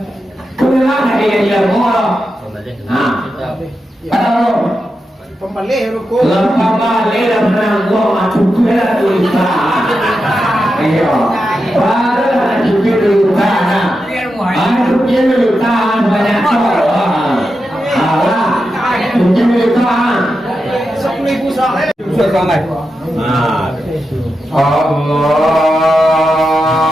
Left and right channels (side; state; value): both; normal; correlation 0.89